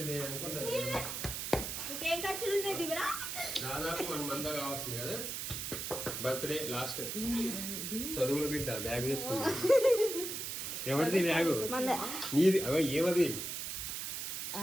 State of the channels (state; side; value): noise; right; hiss, 4 dB below the sound